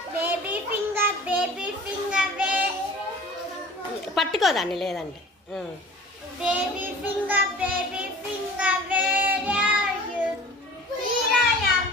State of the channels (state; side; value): normal; both; correlation 0.43